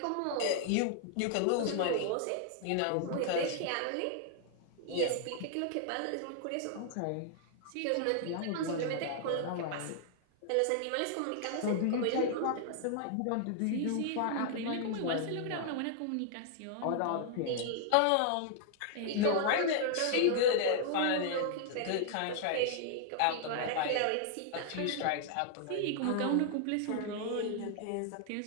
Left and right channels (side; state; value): both; different; correlation 0.00